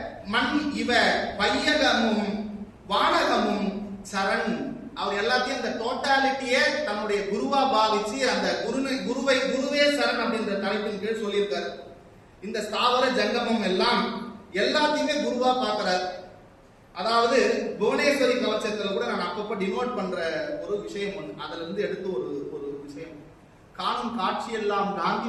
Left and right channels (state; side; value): identical; both; correlation 1.00